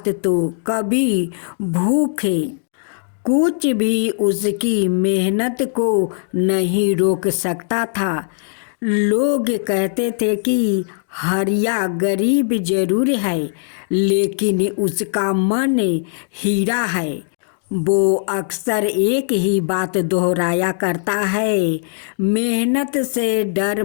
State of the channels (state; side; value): silent; right; digital silence